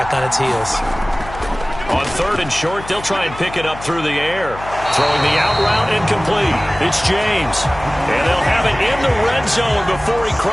on its heels. On 3rd and short, they'll try and pick it up through the air. Throwing the out route incomplete. It's James. And they'll have it in the red zone before he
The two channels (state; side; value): noise; left; hum, 14 dB below the sound